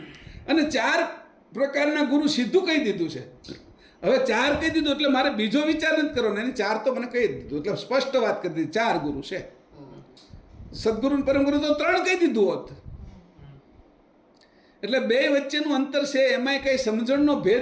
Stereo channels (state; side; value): identical; both; correlation 1.00